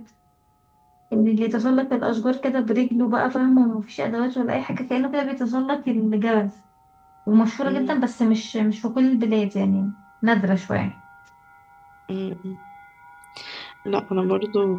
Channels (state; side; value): identical; both; correlation 1.00